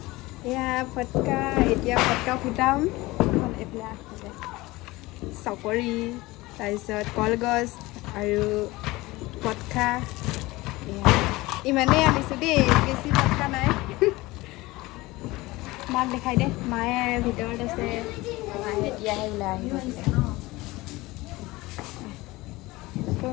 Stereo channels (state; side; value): quieter; right; 20.5 dB